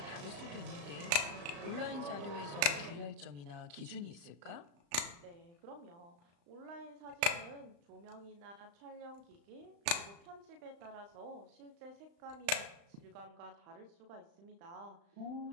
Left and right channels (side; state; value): left; late; 35 ms